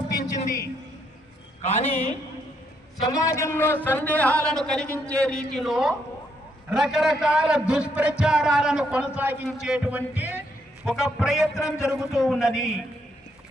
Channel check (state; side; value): normal; both; correlation 0.74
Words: కానీ సమాజంలో సందేహాలను కలిగించే రీతిలో రకరకాల దుష్ప్రచారాలను కొనసాగించేటువంటి ఒక ప్రయత్నం జరుగుతూ ఉన్నది.